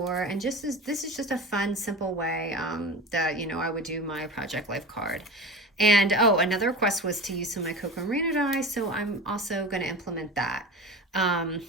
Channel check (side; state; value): both; normal; correlation 0.31